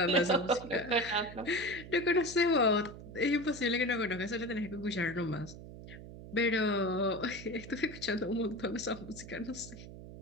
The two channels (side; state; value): right; noise; hum, 14 dB below the sound